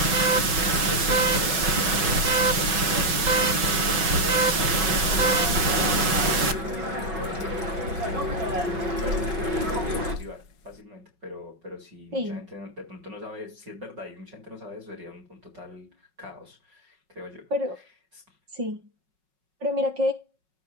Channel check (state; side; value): late; left; 5.4 ms